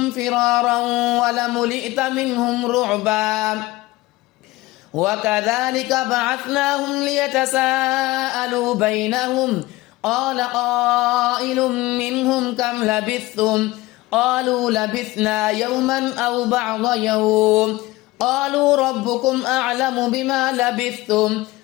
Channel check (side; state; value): right; quieter; 19.4 dB